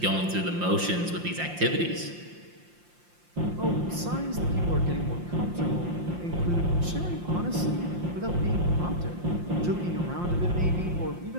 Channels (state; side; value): late; left; 5.7 ms